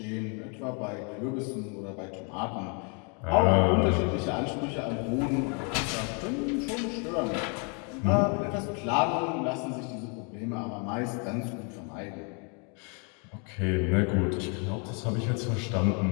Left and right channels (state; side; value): quieter; right; 36.4 dB